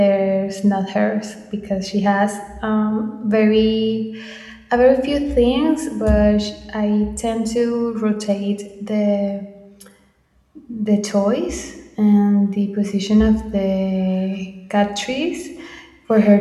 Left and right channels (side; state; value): both; identical; correlation 1.00